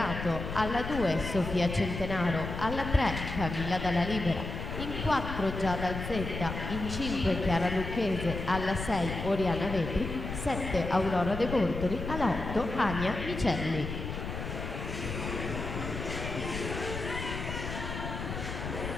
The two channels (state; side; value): noise; left; rumble, 6 dB below the sound